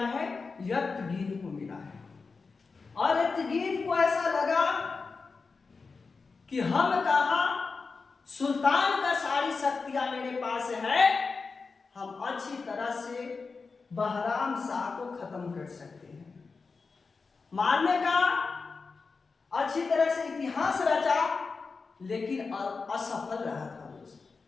है? एतगीन को मिला है। और एतगीन को ऐसा लगा कि हम कहा सुल्तान का सारी शक्तियां मेरे पास है, हम अच्छी तरह से बहराम शाह को खत्म कर सकते हैं। मारने का अच्छी तरह से इतिहास रचा, लेकिन असफल रहा था दोस्त।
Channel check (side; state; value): right; quieter; 4.5 dB